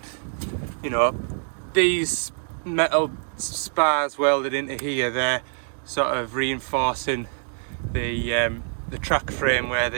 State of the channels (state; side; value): silent; left; 62 dB below the other